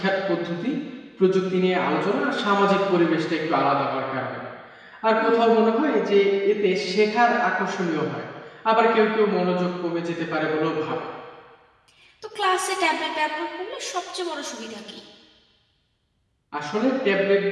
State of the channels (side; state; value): both; identical; correlation 1.00